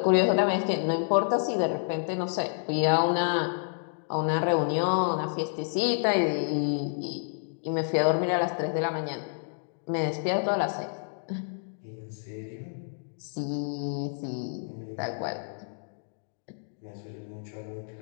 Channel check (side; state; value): right; silent; digital silence